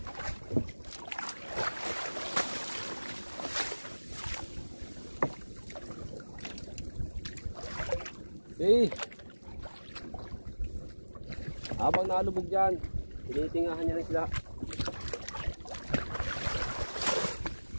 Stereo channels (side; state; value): both; inverted; correlation -1.00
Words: Eh, habang nalubog dyan, tinitingahan niya ng isda.